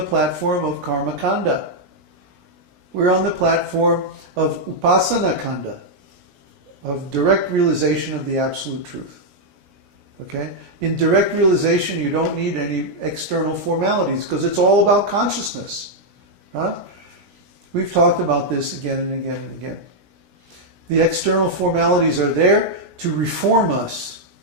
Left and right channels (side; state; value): left; late; 17 ms